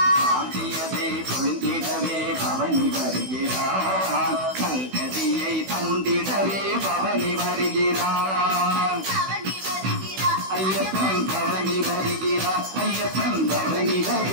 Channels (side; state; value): left; late; 16 ms